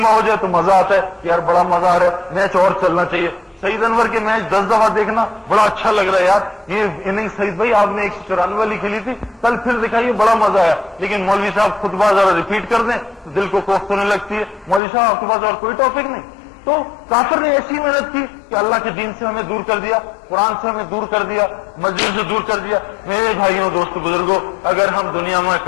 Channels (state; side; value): drops out; right; at 14.8 s